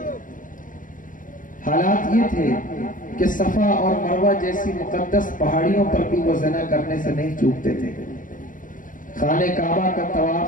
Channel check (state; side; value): late; right; 0.39 ms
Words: حالات یہ تھے کہ صفا اور مروہ جیسی مقدس پہاڑیوں پر بھی وہ زنا کرنے سے نہیں چوکتے تھے. خانہ کعبہ کا